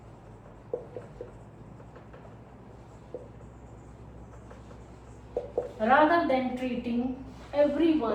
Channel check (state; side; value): identical; both; correlation 1.00